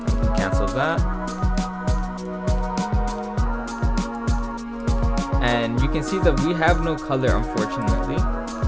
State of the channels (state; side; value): identical; both; correlation 1.00